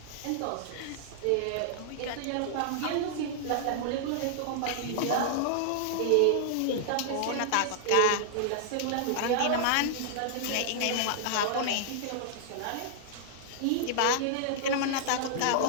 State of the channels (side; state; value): both; different; correlation -0.01